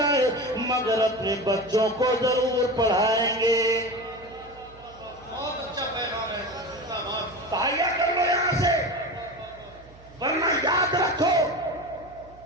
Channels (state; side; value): noise; right; hum, 23 dB below the sound